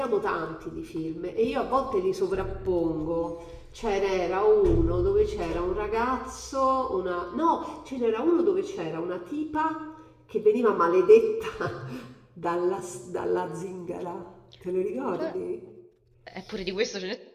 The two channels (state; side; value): identical; both; correlation 1.00